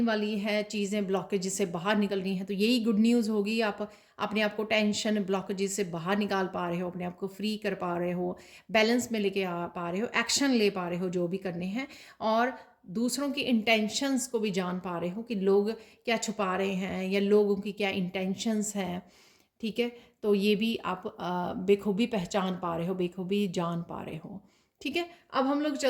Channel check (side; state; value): both; identical; correlation 1.00